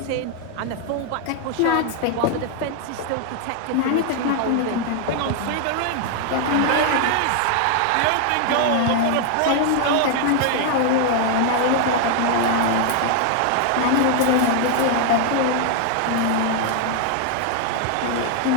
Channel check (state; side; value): different; both; correlation 0.00